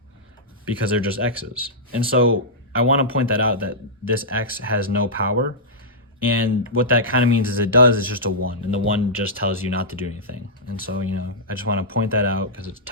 because they're just x's. And so I want to point that out, that this x has no power. And what that kind of means is it does is just a 1, and the 1 just tells you not to do anything. And so, I just want to point that out because it's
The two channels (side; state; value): both; normal; correlation -0.12